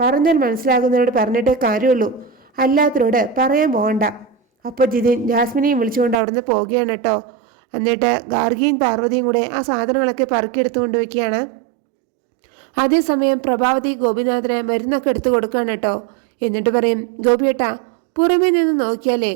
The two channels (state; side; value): drops out; left; at 6.2 s